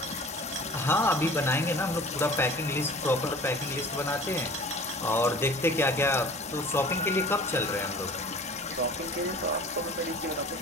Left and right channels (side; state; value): both; normal; correlation 0.43